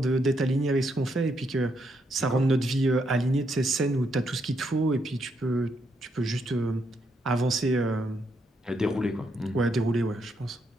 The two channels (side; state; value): both; normal; correlation 0.77